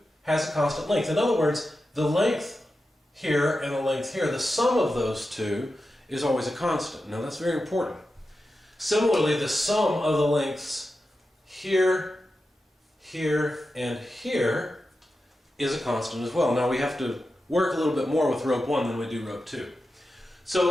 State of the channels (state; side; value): normal; both; correlation 0.91